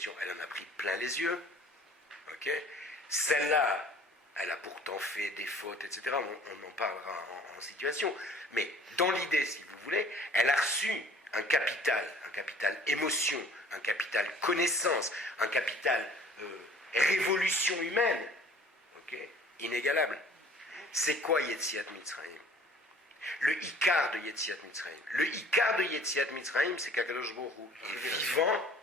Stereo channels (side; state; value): both; normal; correlation 0.51